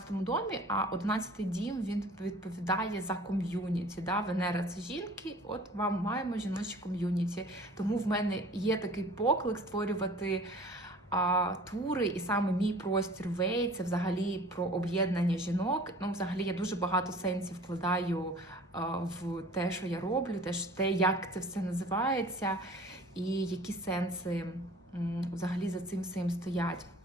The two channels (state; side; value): normal; both; correlation 0.46